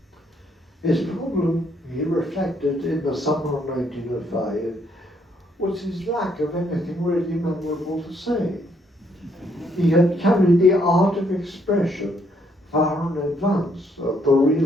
His problem he reflected in the summer of 1905 was his lack of anything really memorable to say. He had carried the art of expression far in advance of the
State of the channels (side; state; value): both; normal; correlation 0.70